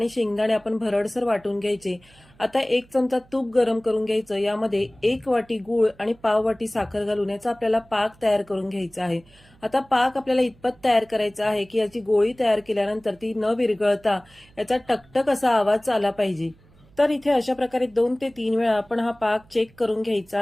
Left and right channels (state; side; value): noise; right; hum, 28 dB below the sound